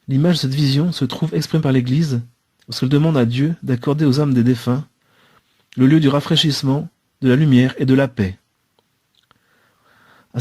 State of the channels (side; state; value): both; identical; correlation 1.00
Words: L'image de cette vision se trouve exprimée par l'Église lorsqu'elle demande à Dieu d'accorder aux âmes des défunts le lieu du rafraîchissement, de la lumière et de la paix. À